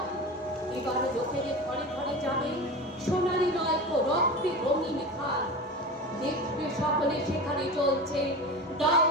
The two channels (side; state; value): both; normal; correlation 0.29